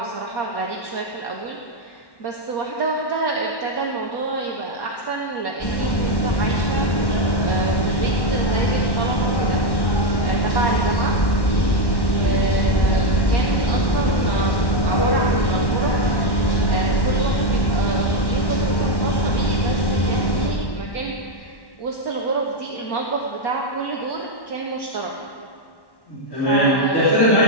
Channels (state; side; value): late; right; 1.1 ms